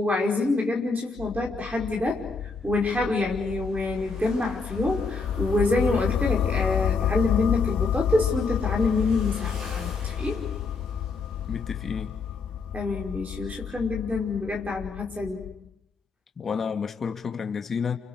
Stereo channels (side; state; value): right; quieter; 4.3 dB